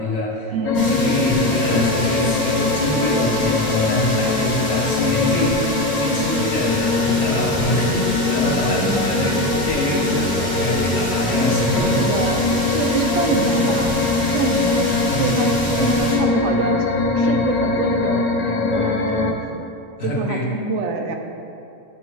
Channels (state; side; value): normal; both; correlation 0.18